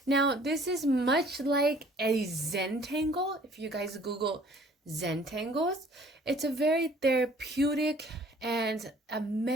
Now this is much like a Zentangle. If you guys Google Zentangles, it's a very therapeutic and a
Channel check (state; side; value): normal; both; correlation 0.55